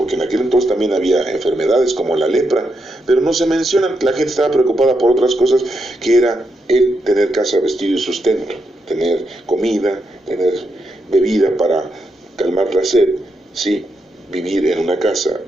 en aquel entonces también había enfermedades como la lepra, pero no se mencionan. La gente estaba preocupada por otras cosas, que era el tener casa, vestido y sustento, tener comida, tener bebida para calmar la sed, sí, vivir en una casa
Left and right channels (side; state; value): both; normal; correlation 0.82